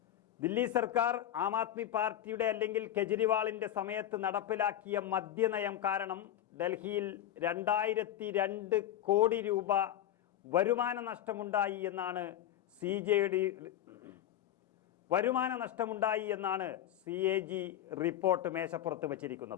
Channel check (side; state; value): right; quieter; 11.6 dB